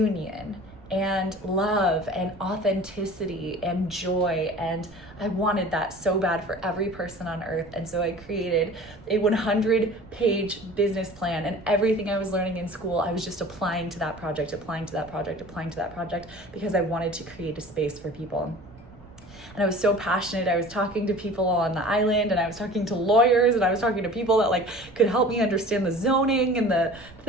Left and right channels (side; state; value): right; noise; rumble, 21 dB below the sound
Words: and love and authenticity and joy. And I wanted that so bad for every person on earth. And so I created a 100-page business plan, and everything I was learning in school, I was just applying to that project, because I wanted to create a space for people. And I was so passionate. I was talking to people on the island, and I was talking to lawyers, and I was talking to people that like could help me understand the zoning and the